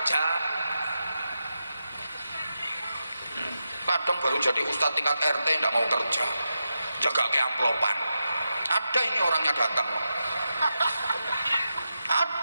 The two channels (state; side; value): inverted; both; correlation -0.88